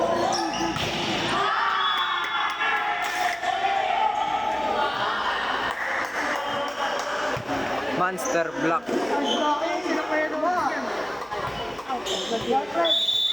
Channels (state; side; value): noise; right; hum, 26 dB below the sound